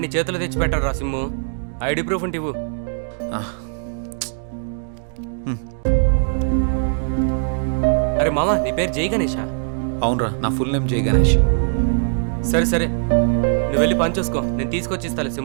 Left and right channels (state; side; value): silent; left; digital silence